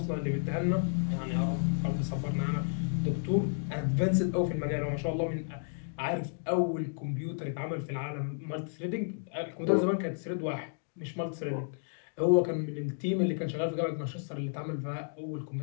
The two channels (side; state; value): right; silent; digital silence